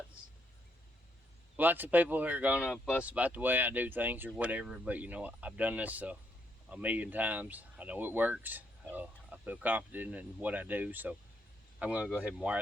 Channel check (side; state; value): both; normal; correlation 0.74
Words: of people who are gonna fuss about the way I do things or whatever, but you know, I've done this a million times. I know it works. I feel confident in what I do, so I'm gonna go ahead and